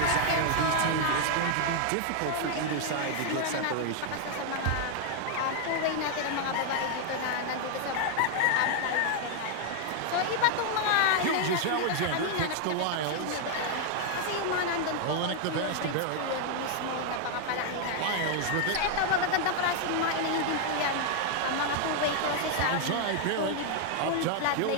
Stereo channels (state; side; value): different; both; correlation 0.00